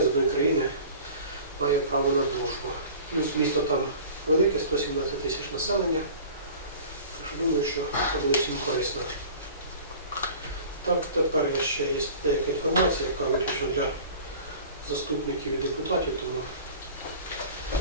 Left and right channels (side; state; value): both; inverted; correlation -0.42